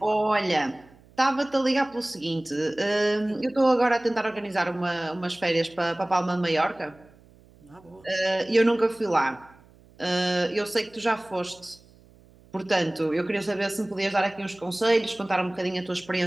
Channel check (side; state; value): right; noise; hum, 27 dB below the sound